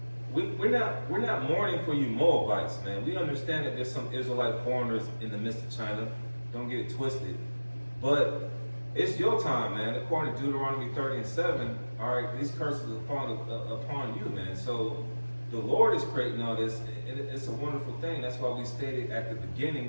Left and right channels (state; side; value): inverted; both; correlation -1.00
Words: We're not mourning for you Moabites, man. We understand that there's some Israelite foreigners in the midst of China. Don't get it twisted. But it's your time, man. According to Deuteronomy 30:7, all right, these curses are falling upon you, man. So the Lord is creating all this, and it's a wonderful thing. That's why we stated at the